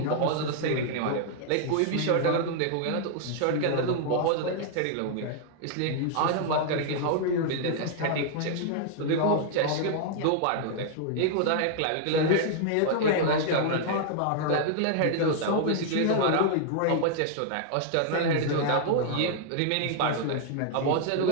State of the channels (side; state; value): both; different; correlation -0.01